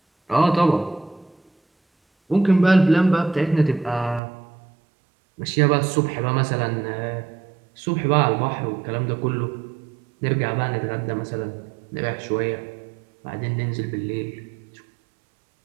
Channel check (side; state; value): left; drops out; at 4.2 s